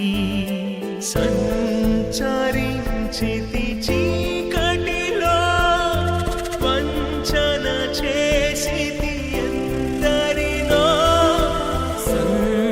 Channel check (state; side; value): identical; both; correlation 1.00